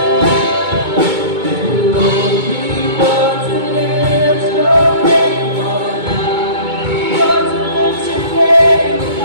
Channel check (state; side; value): late; left; 2.2 ms